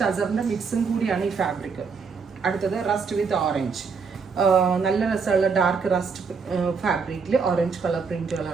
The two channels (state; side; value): quieter; left; 5.3 dB